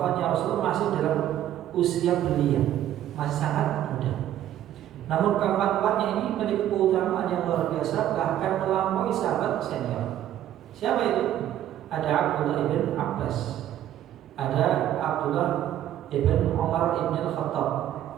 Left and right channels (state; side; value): quieter; left; 11.9 dB